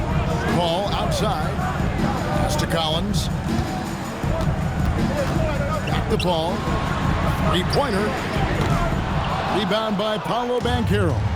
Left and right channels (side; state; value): both; identical; correlation 1.00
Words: Ball outside. Pass to Collins. Back the ball. 3-pointer. Rebound by Paolo Banchero.